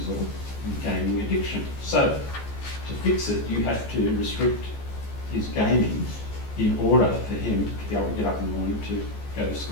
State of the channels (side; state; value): right; late; 14 ms